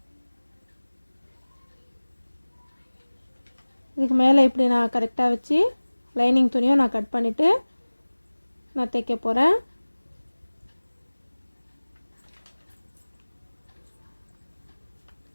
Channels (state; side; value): inverted; both; correlation -1.00